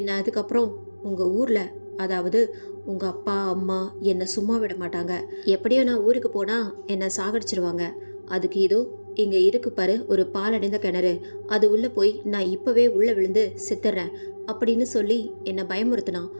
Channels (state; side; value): inverted; both; correlation -1.00